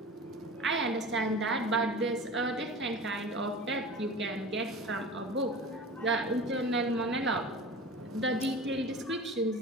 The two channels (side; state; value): both; normal; correlation 0.35